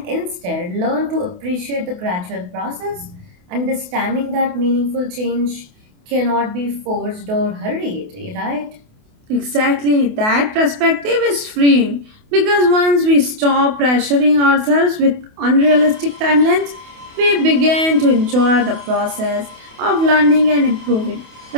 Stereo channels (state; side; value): late; left; 28 ms